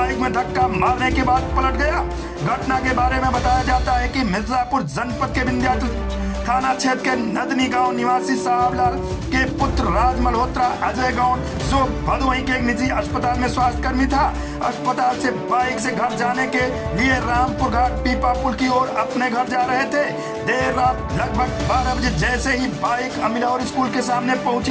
में धक्का मारने के बाद पलट गया। घटना के बारे में बताया जाता है कि मिर्जापुर जनपद के विंध्याचल थाना क्षेत्र के नदनी गांव निवासी साहबलाल के पुत्र राज मल्होत्रा अजय गौड़ जो भदोही के एक निजी अस्पताल में स्वास्थ्यकर्मी था, अस्पताल से बाइक से घर जाने के लिए रामपुर घाट पीपा पुल की ओर अपने घर जा रहे थे। देर रात लगभग 12 बजे जैसे ही बाइक अमिलौर स्कूल के सामने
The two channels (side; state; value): both; identical; correlation 1.00